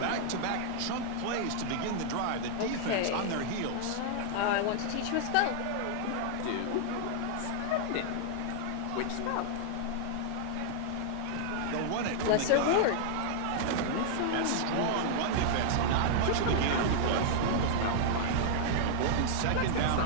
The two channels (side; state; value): both; different; correlation -0.01